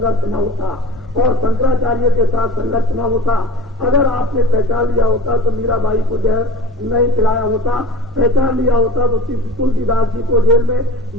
न होता और शंकराचार्य के साथ संघर्ष न होता। अगर आपने पहचान लिया होता तो मीराबाई को जहर नहीं पिलाया होता, पहचान लिया होता तो तुलसीदास जी को जेल में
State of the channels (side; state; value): both; normal; correlation 0.42